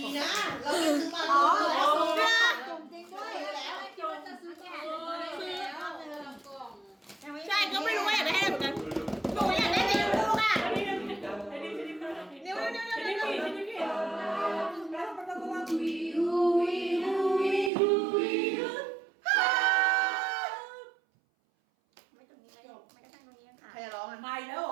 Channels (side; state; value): left; drops out; at 17.7 s